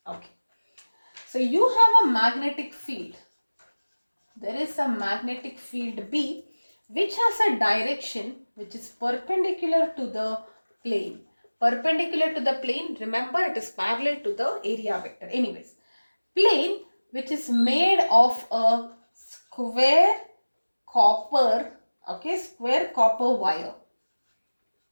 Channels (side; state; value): both; inverted; correlation -1.00